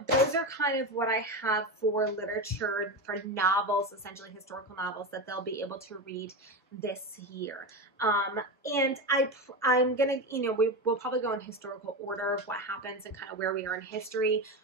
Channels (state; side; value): normal; both; correlation 0.18